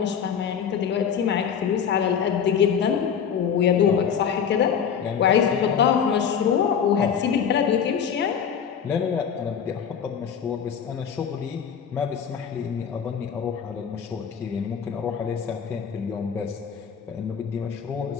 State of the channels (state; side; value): quieter; right; 7.5 dB